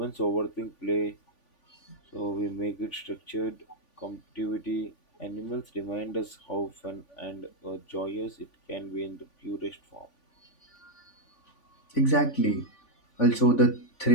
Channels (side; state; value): right; late; 3.5 ms